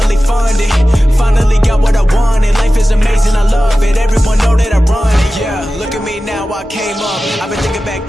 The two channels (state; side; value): normal; both; correlation 0.95